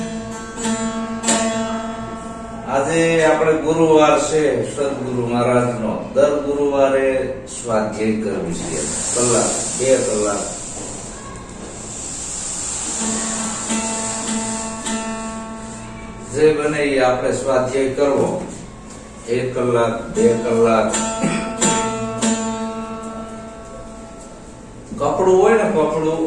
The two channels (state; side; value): identical; both; correlation 1.00